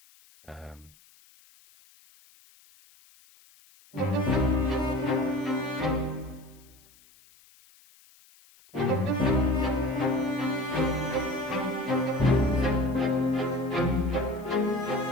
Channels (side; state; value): left; noise; hiss, 28 dB below the sound